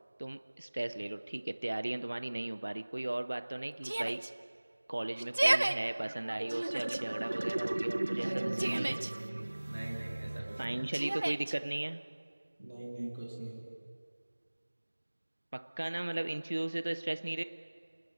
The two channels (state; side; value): inverted; both; correlation -1.00